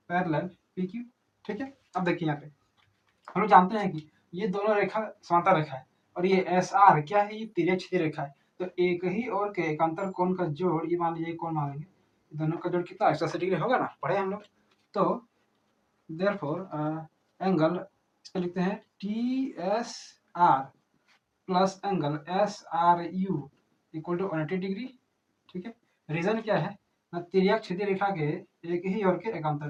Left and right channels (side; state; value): both; identical; correlation 1.00